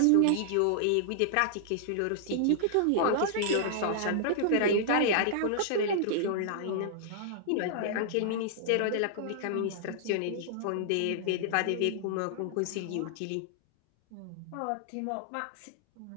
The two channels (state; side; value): different; both; correlation -0.01